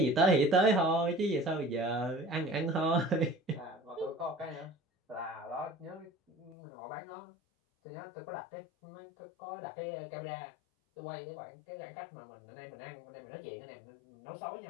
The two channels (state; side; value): drops out; right; at 6.6 s